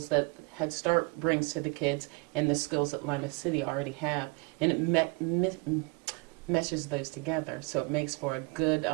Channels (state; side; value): quieter; left; 30.0 dB